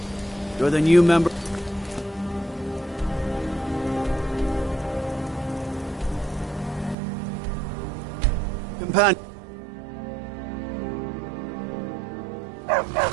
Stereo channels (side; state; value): left; drops out; at 7.0 s